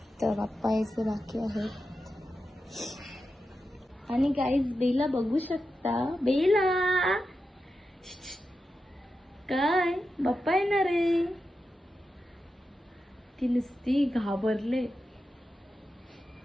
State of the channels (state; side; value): normal; both; correlation 0.90